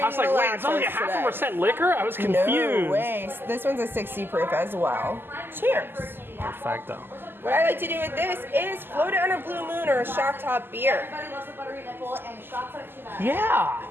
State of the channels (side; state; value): left; late; 0.099 ms